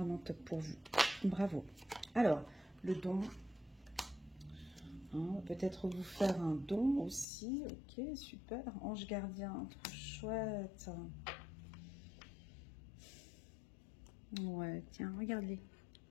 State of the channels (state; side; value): drops out; right; at 7.2 s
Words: top pour vous. Bravo. Alors, le don. Hein, peut-être vous faire un don aussi. Ok, super. Ange gardien, trop chouette. Ouais, tiens, regarde-les.